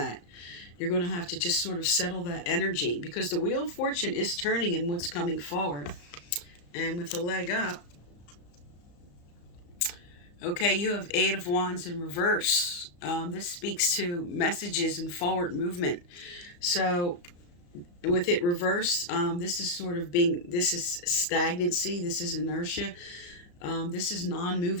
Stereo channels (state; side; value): late; right; 34 ms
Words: You're going to have to just sort of settle that energy, because the Wheel of Fortune is turning in what's coming forward. And with the leg up, okay, you have Eight of Wands in reverse. This speaks to messages and forward movement. So with it reversed, this is sort of this is stagnancy, this is inertia. This is